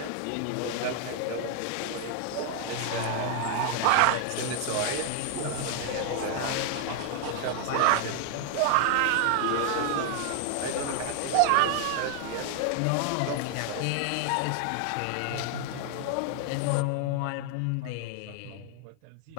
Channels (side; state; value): both; different; correlation 0.00